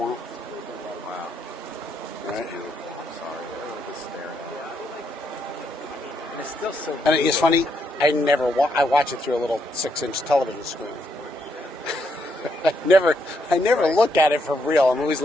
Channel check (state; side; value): normal; both; correlation 0.77